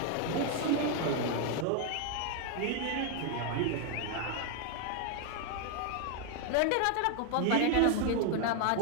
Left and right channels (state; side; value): different; both; correlation 0.01